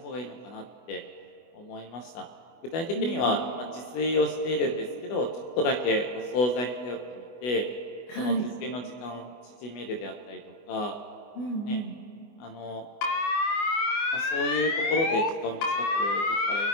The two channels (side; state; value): right; late; 24 ms